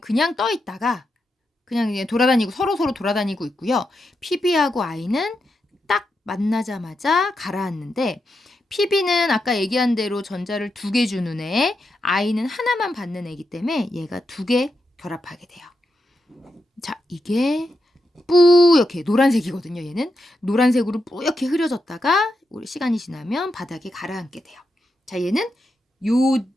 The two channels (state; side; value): normal; both; correlation 0.85